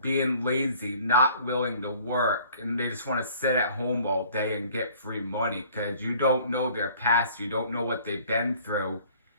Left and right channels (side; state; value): both; inverted; correlation -0.53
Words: being lazy, not willing to work, and they just want to sit at home all day and get free money, because you don't know their past, you don't know what they've been through,